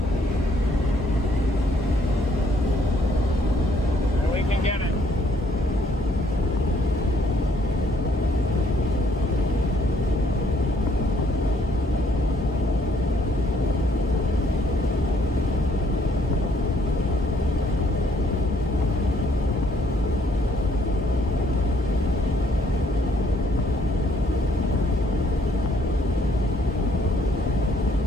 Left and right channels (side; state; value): both; normal; correlation 0.66